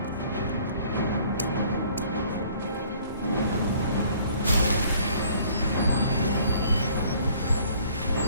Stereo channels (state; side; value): inverted; both; correlation -0.56